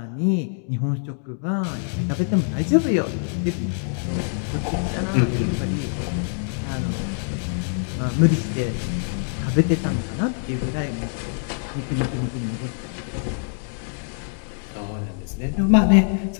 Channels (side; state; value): right; silent; 62 dB below the other